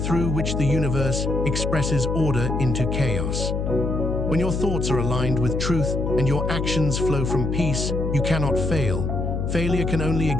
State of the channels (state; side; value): noise; left; hum, 1 dB below the sound